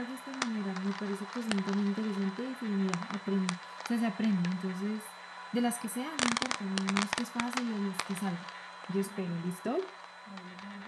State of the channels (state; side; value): identical; both; correlation 1.00